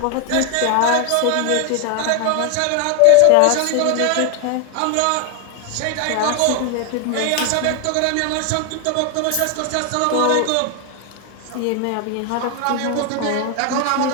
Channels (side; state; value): both; different; correlation 0.01